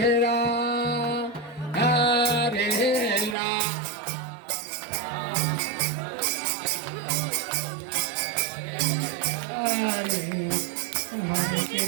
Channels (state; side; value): drops out; left; at 3.4 s